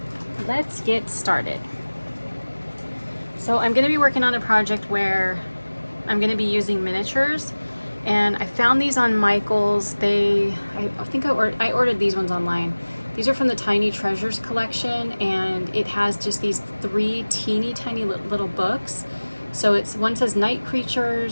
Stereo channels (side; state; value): both; inverted; correlation -1.00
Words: let's get started. So I'm going to be working on a project where I'm going to be using miniatures, and I found these on Michael's. I think I ordered these ones online. These are from the Tiny Treasures collection, and it has just these 3 teeny tiny little books. So one says Night